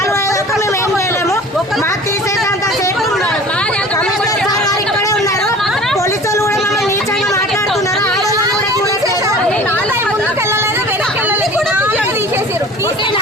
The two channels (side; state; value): both; normal; correlation 0.43